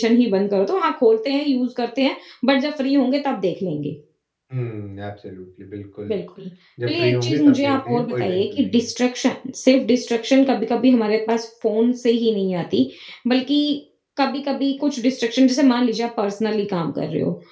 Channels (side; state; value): both; identical; correlation 1.00